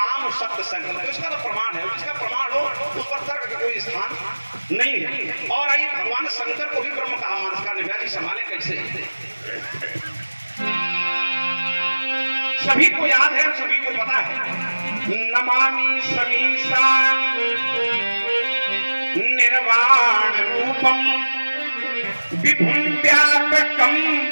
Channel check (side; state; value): both; inverted; correlation -1.00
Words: शब्द संकल्प, तो इसका तो प्रमाण है। जिसका प्रमाण हो उस पर तर्क का कोई स्थान नहीं है। और आइए भगवान शंकर को भी ब्रह्म कहा, मानस का निव्याजी संभाले कैसे? सभी को याद है, सभी को पता है। नमामि समीशान निर्वाण रूपम विभुम व्यापकम